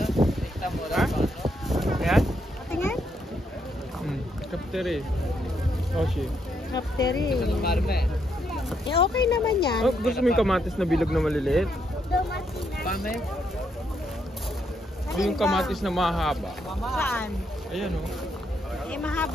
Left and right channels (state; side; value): normal; both; correlation 0.77